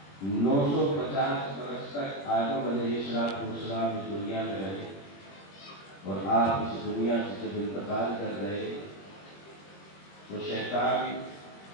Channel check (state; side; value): late; right; 21 ms